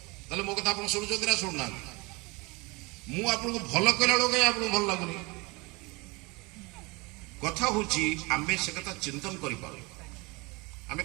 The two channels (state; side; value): quieter; left; 26.3 dB